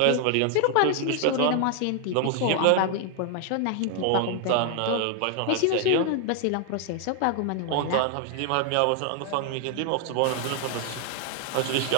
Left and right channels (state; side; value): different; both; correlation 0.00